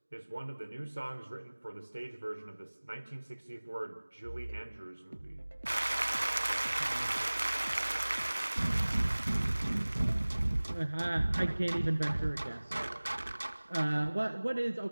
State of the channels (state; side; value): inverted; both; correlation -1.00